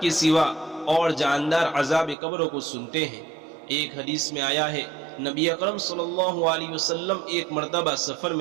کے سوا اور جاندار عذاب قبر کو سنتے ہیں۔ ایک حدیث میں آیا ہے، نبی اکرم صلی اللہ علیہ وسلم ایک مرتبہ سفر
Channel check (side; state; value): left; drops out; at 2.1 s